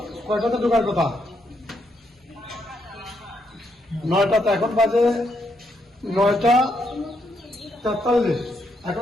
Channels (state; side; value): normal; both; correlation 0.77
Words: কয়টাতে ঢোকার কথা? 9টাতে, এখন বাজে 9:43,